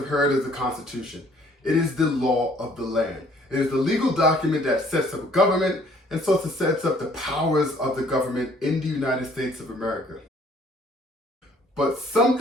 heard of the Constitution. It is the law of the land. It is the legal document that sets up a government and so it sets up the powers of the government in the United States of America. But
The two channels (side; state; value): both; normal; correlation 0.60